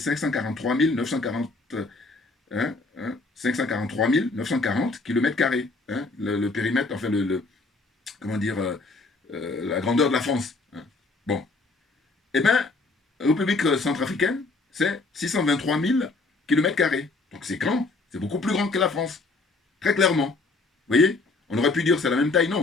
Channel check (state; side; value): quieter; right; 3.6 dB